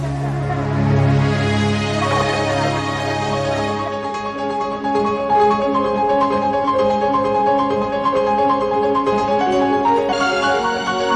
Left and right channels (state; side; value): identical; both; correlation 1.00